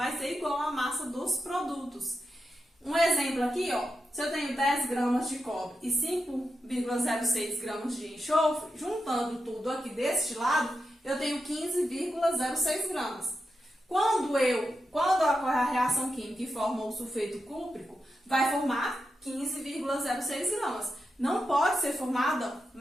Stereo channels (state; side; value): normal; both; correlation 0.88